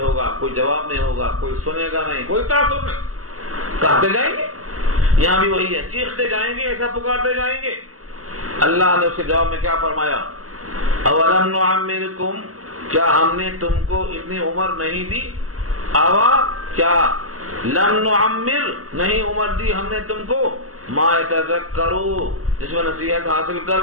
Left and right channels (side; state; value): left; late; 0.65 ms